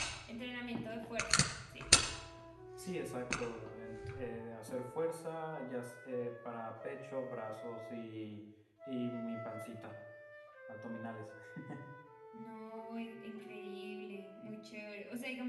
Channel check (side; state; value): both; identical; correlation 1.00